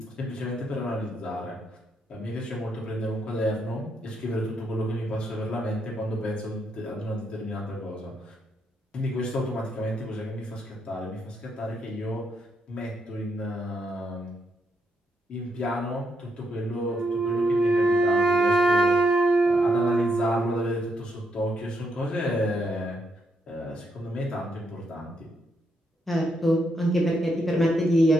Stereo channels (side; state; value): both; normal; correlation 0.78